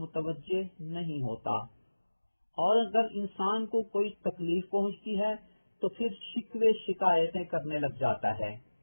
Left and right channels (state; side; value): inverted; both; correlation -1.00